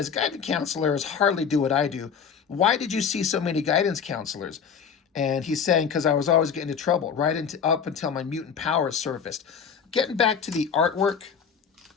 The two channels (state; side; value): quieter; right; 6.9 dB